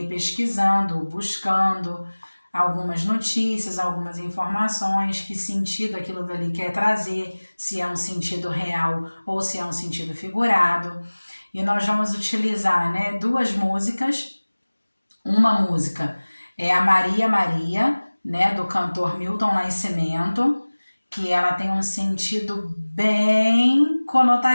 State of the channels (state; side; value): inverted; both; correlation -1.00